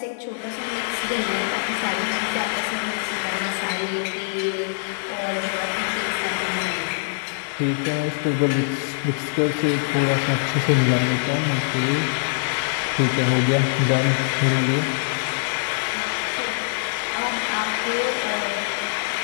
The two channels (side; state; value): right; silent; digital silence